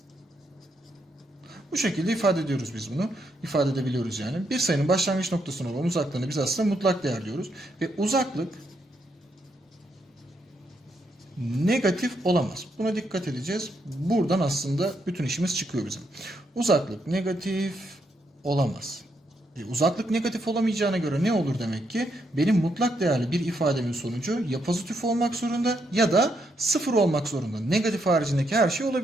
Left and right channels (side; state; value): both; normal; correlation 0.78